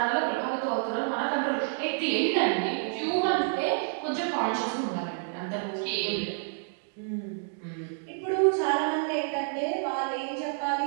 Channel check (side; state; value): left; silent; digital silence